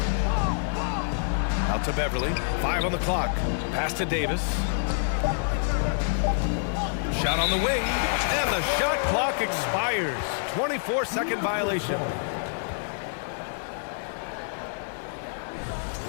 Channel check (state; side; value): silent; right; digital silence